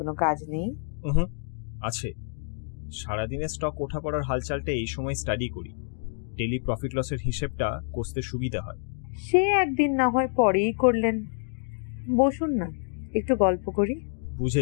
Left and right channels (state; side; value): silent; right; 60 dB below the other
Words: কাজ নেই। আছে, সারাদিনে স্টক ওঠা পড়ার হালচালটা এই সময় স্টাডি করি, ডেলি প্রফিট লসের হিসেবটা কষতে সুবিধা হয়। সে একদিন না হয় পরেই করলেন, বসুন না, একটু গল্প করি।